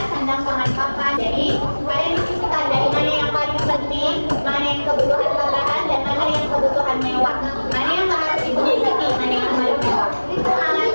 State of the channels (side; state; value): both; inverted; correlation -1.00